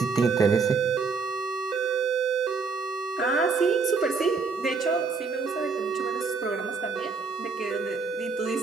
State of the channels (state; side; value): quieter; left; 4.7 dB